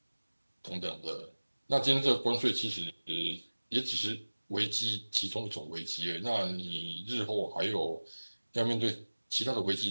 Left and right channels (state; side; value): inverted; both; correlation -1.00